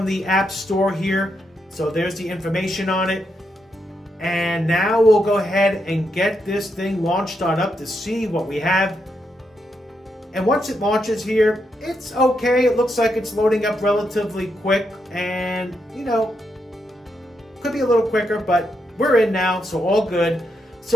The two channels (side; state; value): both; normal; correlation 0.81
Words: the App Store here. So there's the information on it. And now we'll go ahead and get this thing launched on up to see what we have. And once it launches here, it's okay. It looks like it's loading up relatively quick and, you know, could be a little quicker, but we're in now, so all good.